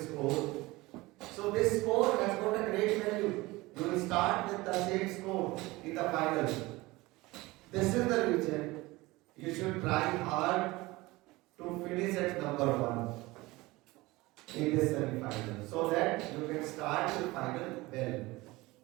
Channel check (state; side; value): quieter; left; 20.9 dB